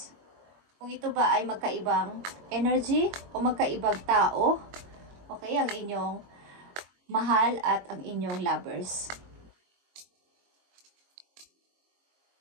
Kung ito ba ay magkaibang energy o magkaibang tao, okay, ang inyong mahal at ang inyong lovers.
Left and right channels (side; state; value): left; late; 22 ms